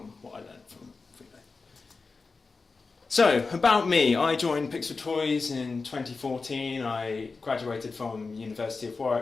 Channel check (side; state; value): right; quieter; 4.2 dB